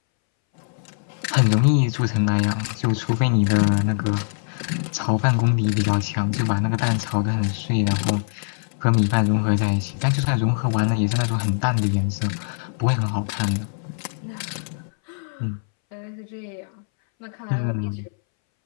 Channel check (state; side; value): silent; right; 63 dB below the other